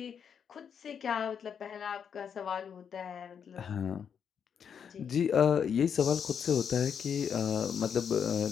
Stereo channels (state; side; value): quieter; right; 7.5 dB